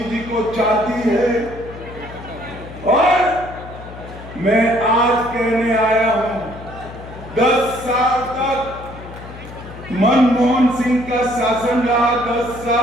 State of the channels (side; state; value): left; noise; hum, 15 dB below the sound